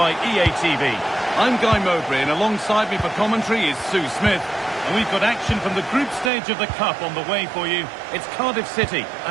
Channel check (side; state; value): left; drops out; at 6.3 s